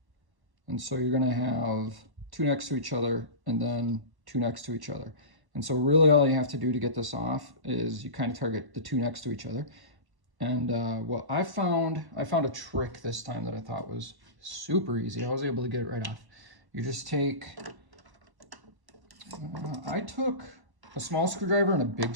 And so you're gonna have two next to each other and then two next to each other. And so really all you have to do to get this off is you kind of target the two next to each other. And what I found a trick this time that I thought was super easy. I was able to get it right off. You just take, I took a small screwdriver and a big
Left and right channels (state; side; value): late; left; 1.1 ms